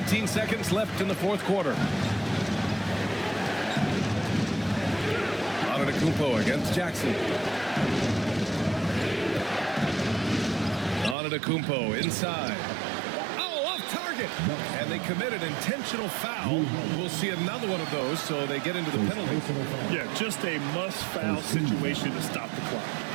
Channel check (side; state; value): left; drops out; at 11.2 s